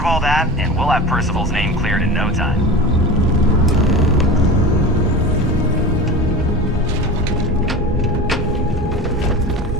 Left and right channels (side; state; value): both; normal; correlation 0.32